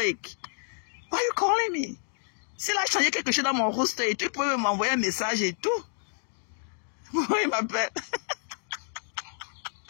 Why are you calling me? Si là, je changeais quelque chose dans mon roster, tu peux m'envoyer un message et tout. Pourquoi il m'appelle?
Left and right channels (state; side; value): silent; right; 59 dB below the other